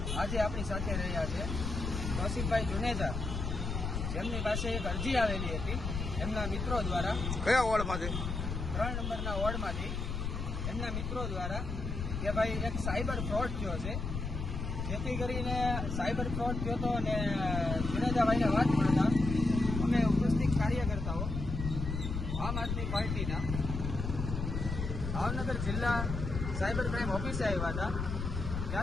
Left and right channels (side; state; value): left; noise; rumble, 4 dB below the sound